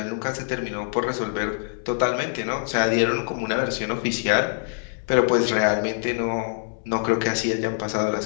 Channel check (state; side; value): silent; right; digital silence